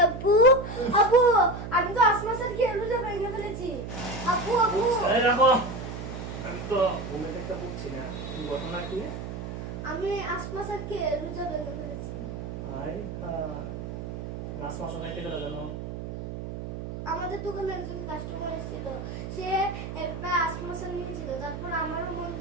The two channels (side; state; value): right; noise; hum, 7 dB below the sound